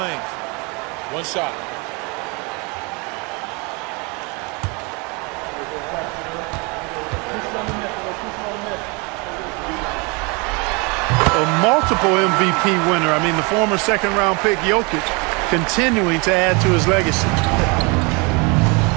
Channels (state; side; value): quieter; left; 29.6 dB